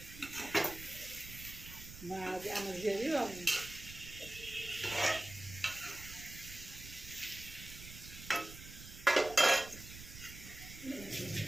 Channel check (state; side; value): noise; right; rumble, 14 dB below the sound